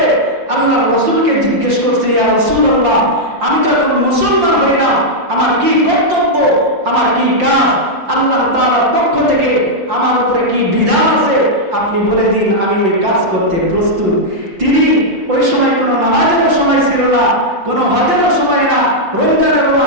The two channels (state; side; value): late; left; 5.7 ms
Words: আল্লাহর রাসূলকে জিজ্ঞেস করছে, ইয়া রাসূলুল্লাহ, আমি তো এখন মুসলমান হইলাম, আমার কি কর্তব্য, আমার কি কাজ, আল্লাহ তাআলার পক্ষ থেকে আমার উপরে কি বিধান আছে, আপনি বলে দিন, আমি ওই কাজ করতে প্রস্তুত। তিনি ওই সময় কোনো নামাজেরও সময় ছিল না, কোনো হজেরও সময় না, রমজানেরও